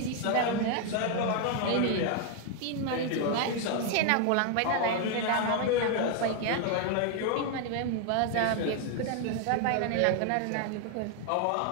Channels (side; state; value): both; different; correlation 0.00